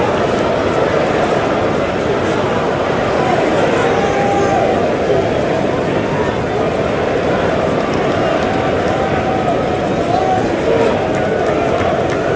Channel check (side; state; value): both; identical; correlation 1.00